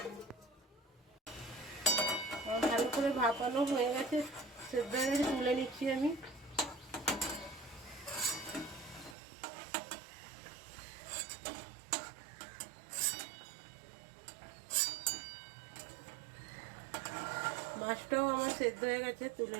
ভালো করে ভাপানো হয়ে গেছে, সেদ্ধ হয়ে গেছে, তুলে নিচ্ছি আমি। মাছটাও আমার সেদ্ধ হয়ে গেছে, তুলে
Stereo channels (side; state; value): left; drops out; at 9.2 s